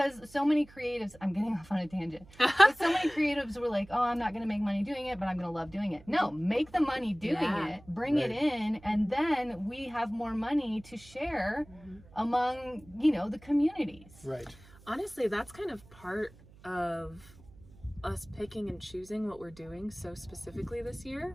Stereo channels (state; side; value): noise; right; hum, 23 dB below the sound